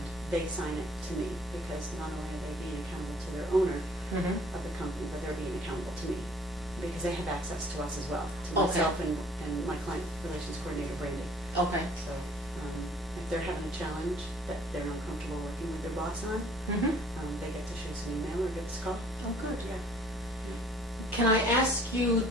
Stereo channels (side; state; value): both; normal; correlation 0.55